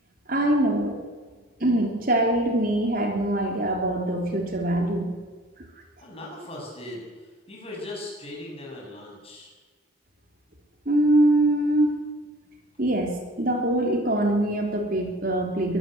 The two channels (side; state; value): both; normal; correlation 0.48